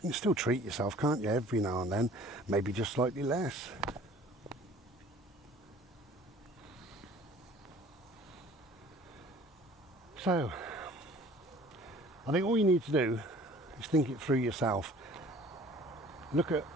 still treat yourself, can't you, every now and then, maybe just slightly less. So, I think all you need to do is think it through yourself. Look at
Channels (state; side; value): normal; both; correlation 0.50